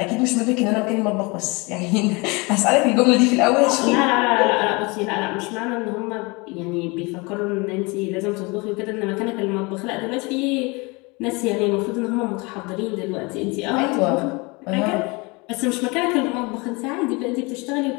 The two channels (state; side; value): quieter; right; 27.0 dB